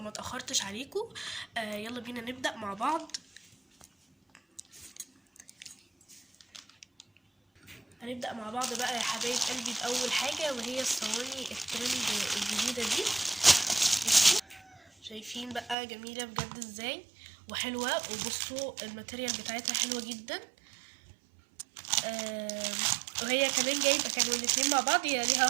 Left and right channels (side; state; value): left; drops out; at 15.8 s